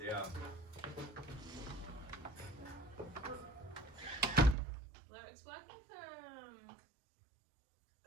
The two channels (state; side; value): drops out; left; at 4.5 s